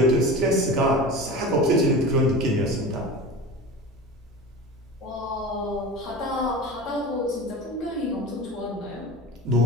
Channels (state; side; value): normal; both; correlation 0.32